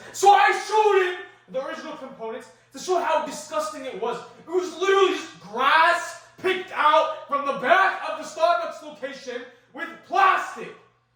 So I showed him the original components to show how disgusting it was. It was literally just grass picked out from the back of the Starbucks location with plastic.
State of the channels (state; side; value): identical; both; correlation 1.00